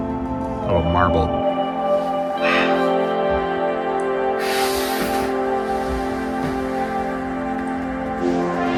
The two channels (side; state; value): both; identical; correlation 1.00